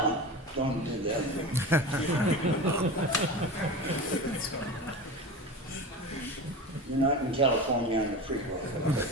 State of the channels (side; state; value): both; normal; correlation 0.29